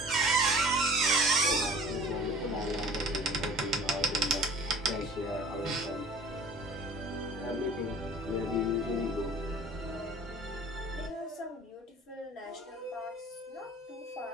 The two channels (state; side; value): normal; both; correlation 0.47